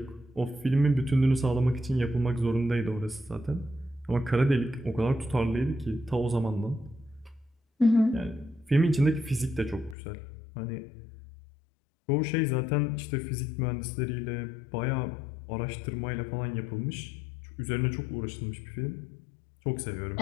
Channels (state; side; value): drops out; right; at 10.0 s